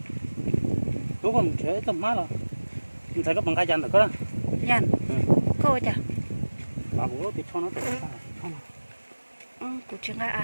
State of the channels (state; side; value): inverted; both; correlation -1.00